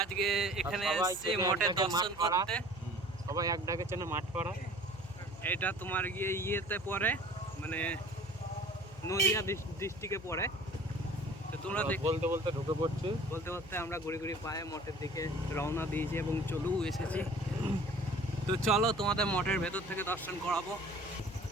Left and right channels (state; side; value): noise; left; hum, 18 dB below the sound